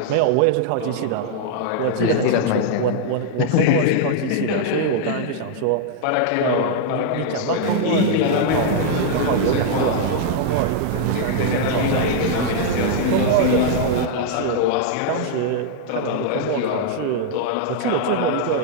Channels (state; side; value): different; both; correlation -0.01